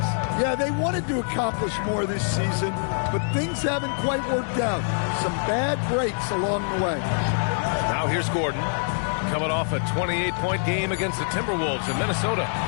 Yeah, they wanted to accomplish more this season, but things haven't quite worked out. Some bad breaks along the way. Now here's Gordon, coming off a 28-point game against the Timberwolves in Minnesota.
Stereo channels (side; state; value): right; silent; digital silence